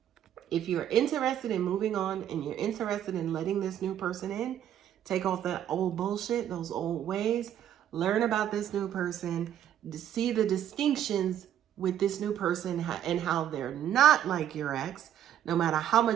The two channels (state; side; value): quieter; left; 10.6 dB